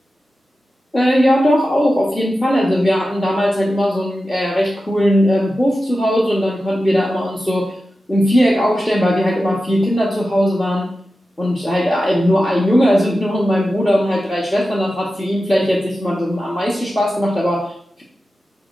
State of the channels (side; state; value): both; normal; correlation 0.93